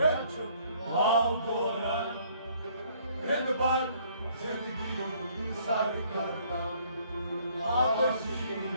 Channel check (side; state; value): both; inverted; correlation -0.62